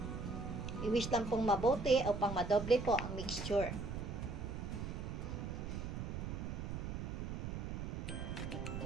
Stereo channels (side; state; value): right; noise; rumble, 4 dB below the sound